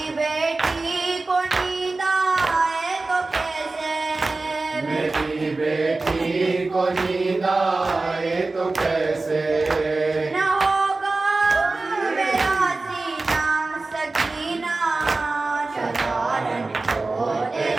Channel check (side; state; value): left; quieter; 3.4 dB